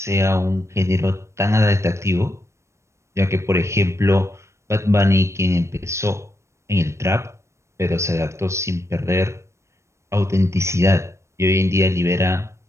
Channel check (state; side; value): late; left; 0.13 ms